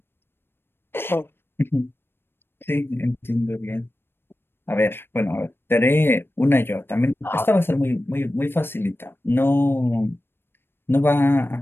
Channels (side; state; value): right; late; 0.11 ms